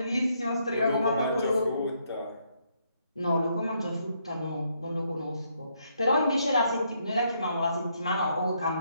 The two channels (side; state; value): both; inverted; correlation -0.74